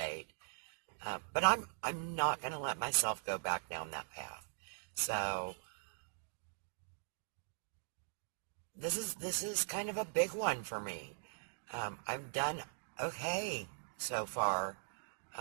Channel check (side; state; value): left; silent; digital silence